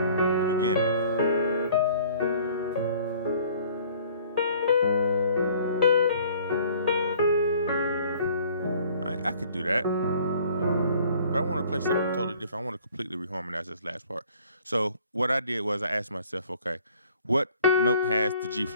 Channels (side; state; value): both; inverted; correlation -0.55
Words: beginning. I could do that, but I want to play something totally different. I want to completely reharmonize this last part. So what I did was I asked myself, okay, what note has the G